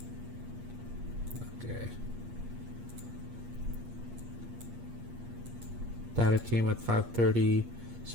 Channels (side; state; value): left; late; 8.4 ms